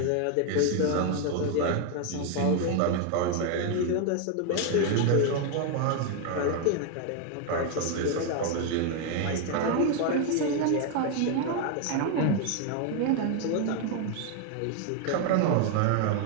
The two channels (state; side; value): different; both; correlation 0.01